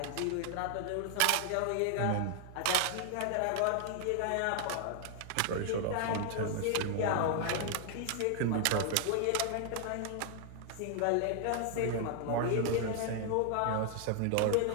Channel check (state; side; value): different; both; correlation 0.00